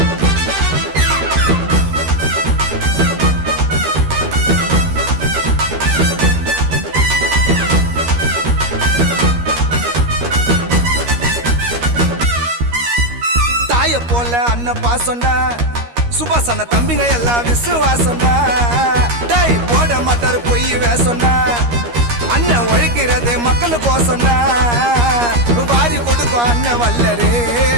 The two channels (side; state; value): left; late; 13 ms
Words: போல அண்ணன் பாசம்டா, சுபாஷ் அண்ணன் தம்பிங்க எல்லாம் விசுவாசம்டா. டை போட மாட்டாரு பொய் வேசம்டா, அண்ணன் உழைக்கிறது மக்களுக்கோசம்டா. வாரி கொடுக்கும் அண்ணன் வல்லரு,